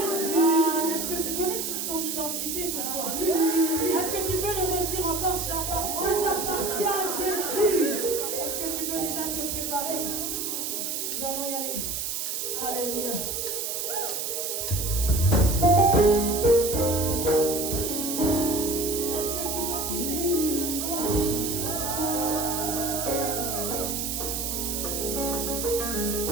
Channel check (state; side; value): noise; right; hiss, 2 dB below the sound